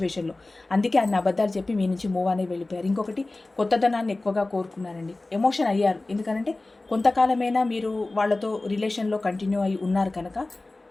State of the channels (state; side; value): quieter; right; 3.0 dB